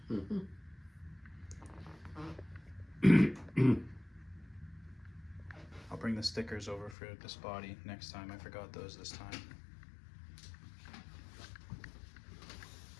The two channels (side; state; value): right; drops out; at 7.0 s